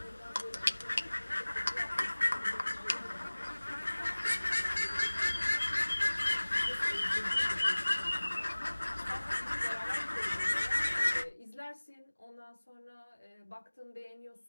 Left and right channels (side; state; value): both; inverted; correlation -1.00